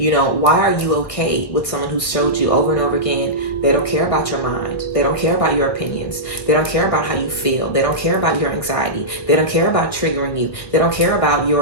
know, why are you okay with someone who showed you over and over again they don't care about your mind, they don't care about your opinions, they don't care about how you feel, they don't care about your anxiety, they don't care about triggering you, they don't care about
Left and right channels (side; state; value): right; late; 1.9 ms